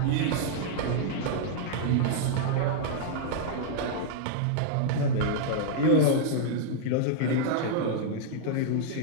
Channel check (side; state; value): both; different; correlation -0.01